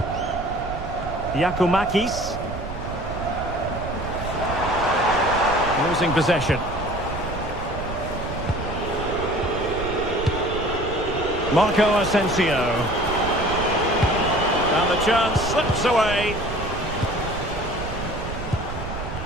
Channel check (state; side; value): noise; right; rumble, 8 dB below the sound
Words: Giacomakis. Losing possession. Marco Asensio. And the chance slips away.